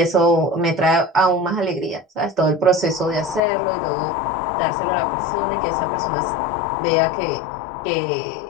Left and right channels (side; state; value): right; drops out; at 3.4 s